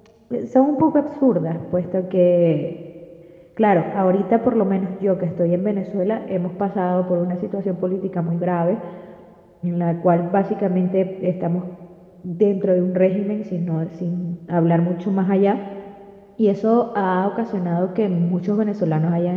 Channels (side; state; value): both; identical; correlation 1.00